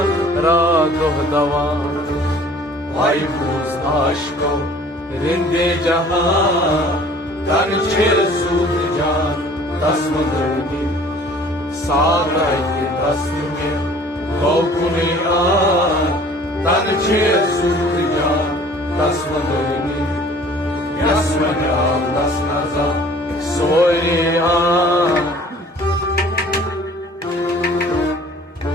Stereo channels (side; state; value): both; normal; correlation 0.51